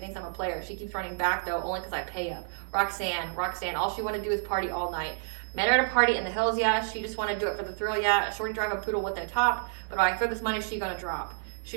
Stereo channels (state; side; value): silent; left; 58 dB below the other